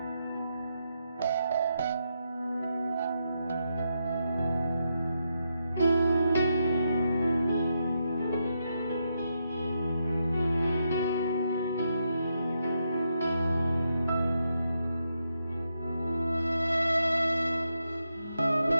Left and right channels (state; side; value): inverted; both; correlation -0.82